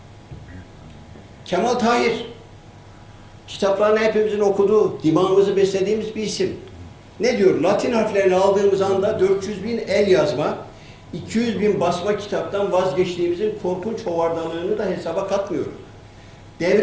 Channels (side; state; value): both; identical; correlation 1.00